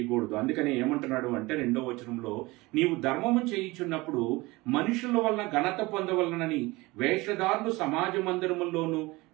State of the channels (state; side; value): quieter; left; 22.0 dB